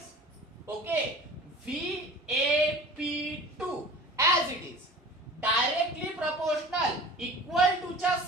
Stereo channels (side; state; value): both; normal; correlation 0.41